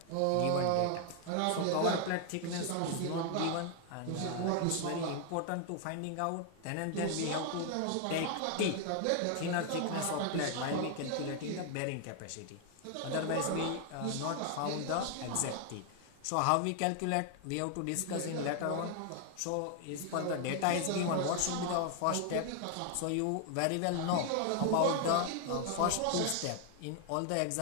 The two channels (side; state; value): both; different; correlation 0.00